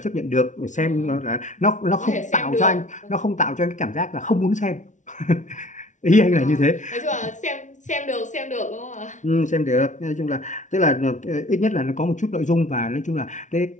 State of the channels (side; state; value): right; late; 0.36 ms